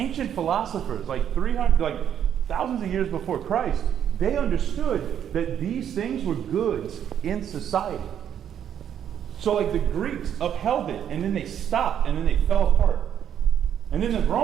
philosophers, like 300, like thousands of years before Christ, they understood that these things were goods in society. So, like, the Greeks upheld it, and then they stopped, and then they fell apart. And then the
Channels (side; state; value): left; quieter; 9.3 dB